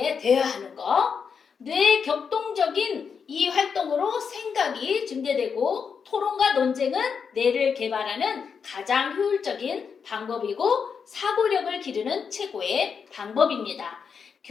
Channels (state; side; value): quieter; right; 6.2 dB